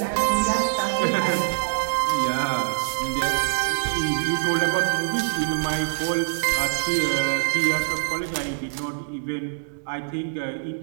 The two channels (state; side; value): silent; left; digital silence